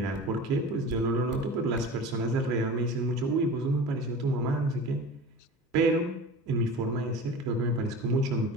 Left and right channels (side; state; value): both; normal; correlation 0.35